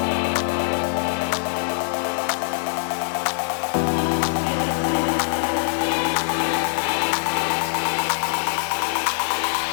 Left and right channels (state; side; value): silent; right; digital silence